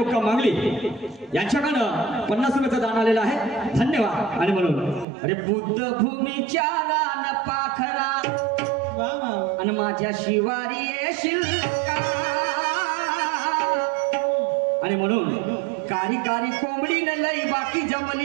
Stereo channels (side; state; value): left; drops out; at 5.1 s